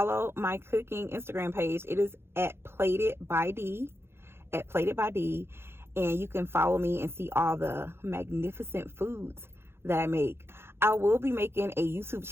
my cooking Instagram page. It is at Plated by D, and you can follow me and see all the magnificent foods that I make. I will be making a YouTube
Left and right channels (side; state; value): left; late; 0.12 ms